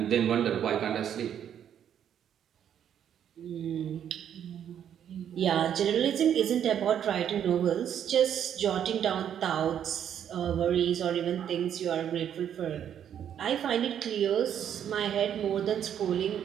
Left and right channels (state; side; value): quieter; left; 9.4 dB